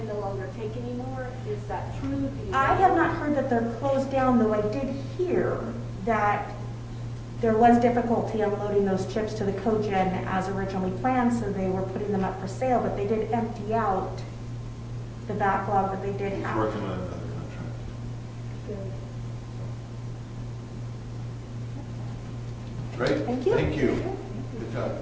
no longer take anymore. Is that true? Do you I know? have not heard that they're closed down, though I did hear that there was difficulty unloading those chips to the cogen as originally planned, so they were putting them up for sale, but they did empty out the backlog that they did He's have. working on another contract. Good. Great. Thank you. Thank you. Good job.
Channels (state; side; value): identical; both; correlation 1.00